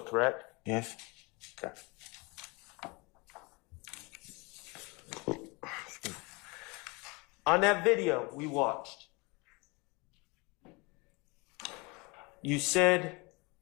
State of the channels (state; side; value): quieter; right; 27.3 dB